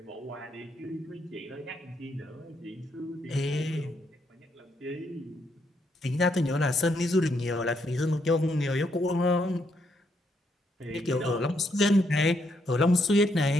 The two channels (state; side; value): normal; both; correlation 0.76